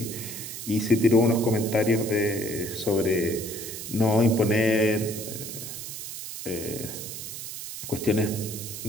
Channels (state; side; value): noise; right; hiss, 8 dB below the sound